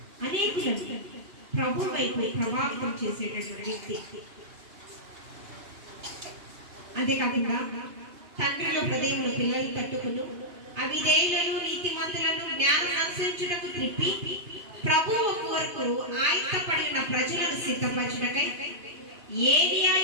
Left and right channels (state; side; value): late; left; 2.9 ms